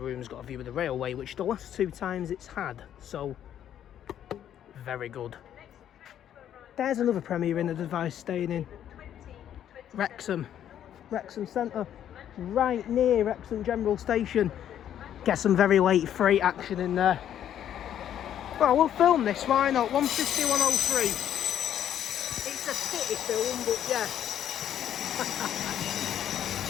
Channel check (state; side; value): quieter; right; 10.4 dB